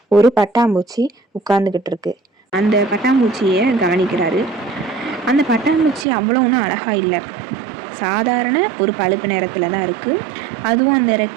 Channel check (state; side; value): drops out; left; at 6.1 s